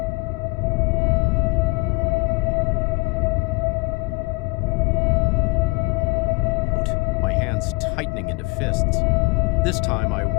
My hands tightening into fists. This time, I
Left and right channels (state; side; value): quieter; right; 27.9 dB